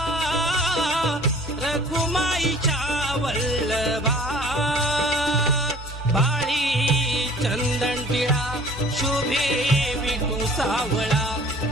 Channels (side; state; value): both; normal; correlation 0.50